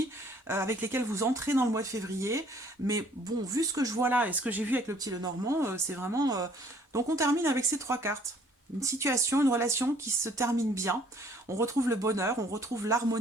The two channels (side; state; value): both; normal; correlation 0.59